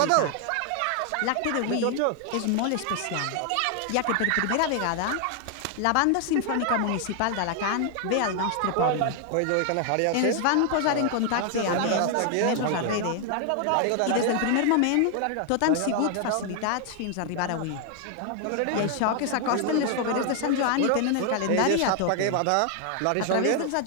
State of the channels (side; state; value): both; different; correlation 0.00